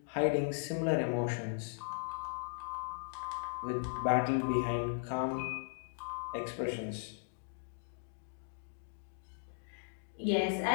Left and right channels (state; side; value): silent; right; digital silence